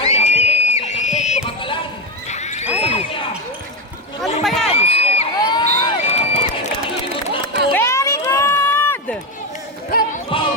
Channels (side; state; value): both; normal; correlation 0.12